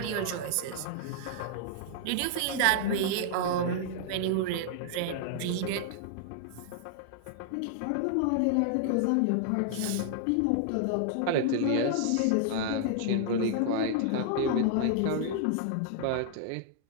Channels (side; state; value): both; different; correlation -0.01